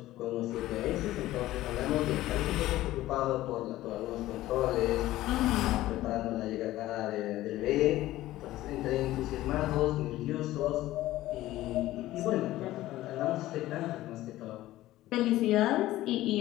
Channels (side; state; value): right; quieter; 15.7 dB